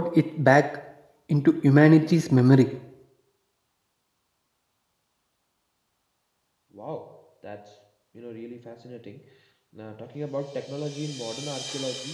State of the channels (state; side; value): identical; both; correlation 1.00